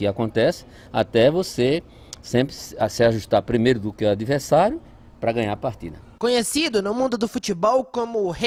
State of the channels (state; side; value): identical; both; correlation 1.00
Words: acontece até você sempre se ajustar primeiro do que o adversário para ganhar a partida. Conhecido no mundo do futebol como o